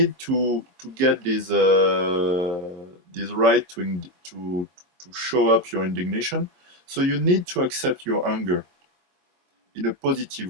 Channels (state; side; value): late; left; 23 ms